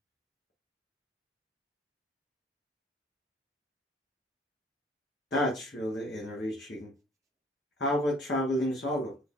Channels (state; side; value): normal; both; correlation 0.56